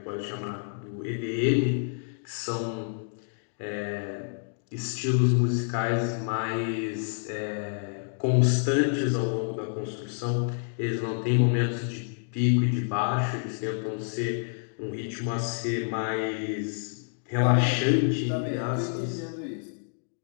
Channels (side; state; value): right; silent; digital silence